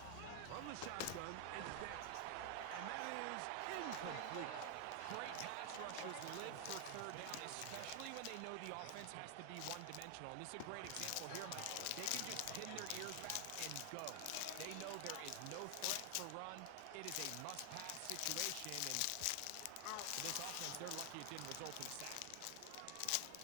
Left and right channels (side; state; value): both; different; correlation 0.00